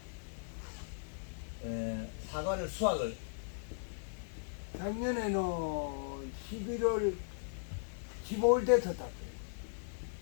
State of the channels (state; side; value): silent; right; digital silence